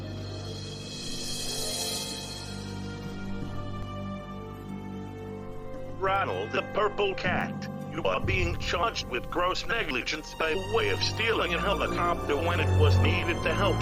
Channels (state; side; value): identical; both; correlation 1.00